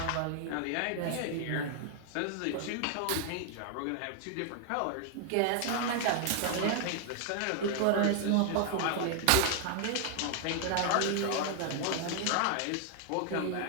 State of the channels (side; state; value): both; different; correlation 0.00